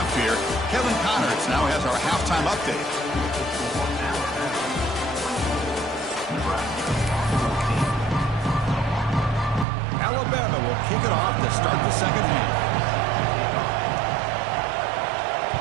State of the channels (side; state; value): left; drops out; at 9.7 s